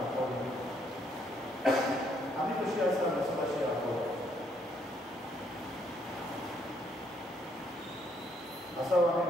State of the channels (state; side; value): normal; both; correlation 0.70